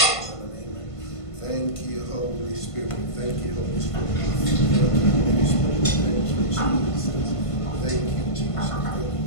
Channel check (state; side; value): late; right; 1.5 ms